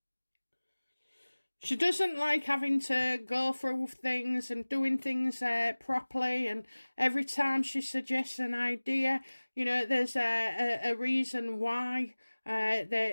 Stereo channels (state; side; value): inverted; both; correlation -1.00